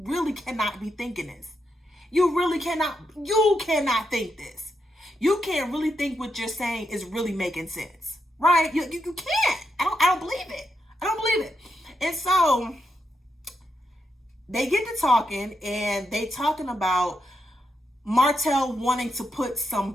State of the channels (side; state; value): both; normal; correlation 0.83